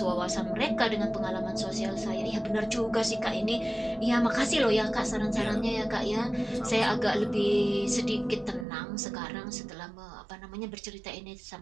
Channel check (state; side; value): drops out; left; at 8.7 s